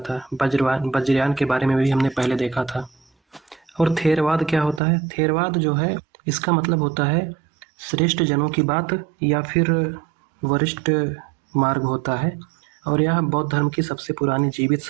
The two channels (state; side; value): drops out; left; at 4.8 s